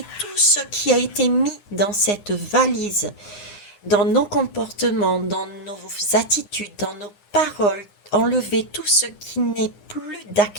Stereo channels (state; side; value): late; right; 9.8 ms